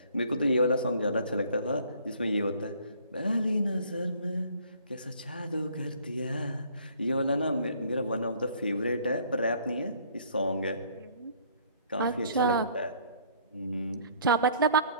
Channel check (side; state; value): both; inverted; correlation -0.57